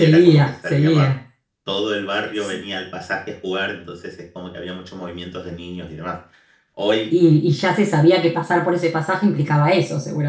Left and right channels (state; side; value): identical; both; correlation 1.00